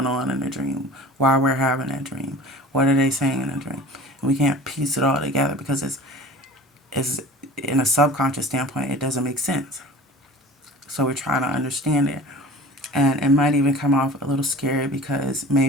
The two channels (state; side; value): normal; both; correlation 0.41